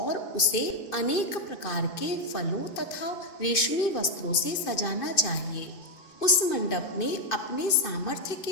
उसे अनेक प्रकार के फलों तथा रेशमी वस्त्रों से सजाना चाहिए। उस मंडप में अपने सामर्थ्य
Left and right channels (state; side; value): late; right; 2.5 ms